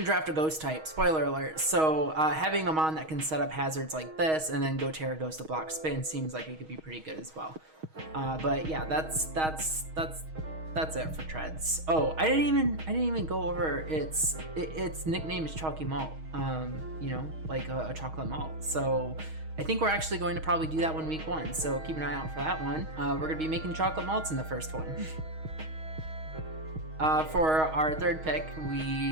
draft a ghost type, spoiler alert, so having a mon that can set up hazards like this and then go Terra Ghost to block spin seems like it could be pretty good as well. But yeah, that's it for Treads. Oh, I didn't even go over its nickname is Chalky Malt. You know, like a chocolate malt. So I think we're actually going to probably do that one week 1. So keep an eye out for that one. We're gonna be making chocolate malts in the first one. For our third pick,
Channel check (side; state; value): left; late; 6.3 ms